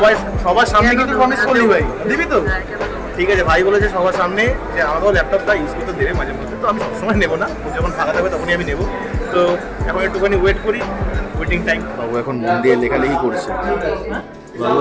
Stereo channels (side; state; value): both; identical; correlation 1.00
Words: সবার সামনে কিন্তু প্রমিস করলি ভাই, দিবি তো? ঠিক আছে, ভাই বলেছে সবার সামনে যে আমাকেও ল্যাপটপটা ইউজ করতে দেবে মাঝে মধ্যে। তো আমি সবসময় নেবো না, যখন ফাঁকা থাকবে তখনই আমি নেবো। তো এখন একটুখানি ওয়েট করি, ওয়েটিং টাইম। বাবু এখন মন দিয়ে লেখালেখি করছে, বাবু